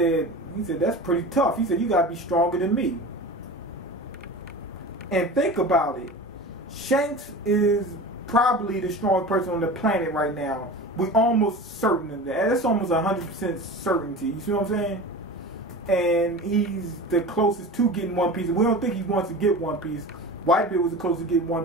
"That's pretty tough." He said, "You gotta be stronger than me." And think about it. Shanks is probably the strongest person on the planet right now. We're almost certain of that. That's almost 100% certainty. You see what I'm saying? And he's the closest to getting One Piece. We don't think he wants to get One Piece. Whitebeard was the closest to getting One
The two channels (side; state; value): both; normal; correlation 0.33